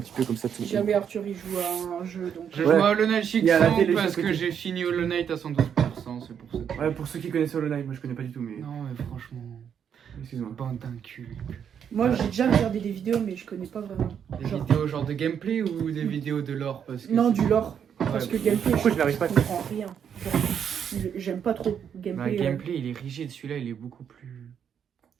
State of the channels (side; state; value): left; quieter; 8.1 dB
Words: petit peu comme ça. Si jamais Arthur il joue à un jeu, donc. Je Ouais. joue à Hollow Knight Il y a la Shiksong télé parce juste à que côté. j'ai fini Hollow Knight à 112%, c'est pour ça. Ouais, pour ceux qui connaissent Hollow Knight, moi je connais pas du tout, mais. Non mais franchement, Excuse-moi. bande d'un cul. Moi, j'ai déjà regardé des vidéos, mais je connais pas vraiment. Des Genre- vidéos genre de gameplay ou des vidéos de lore parce que Non, c'est- du lore. Ouais, Parce que bah, gameplay, Pourquoi je n'arrive pas à je comprends rien. Genre, j'aime pas trop bah, gameplay. gameplay il est rigide, celui-là il est beaucoup plus.